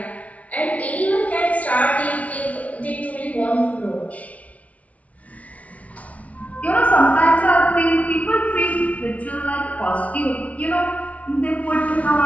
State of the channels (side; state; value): right; late; 0.067 ms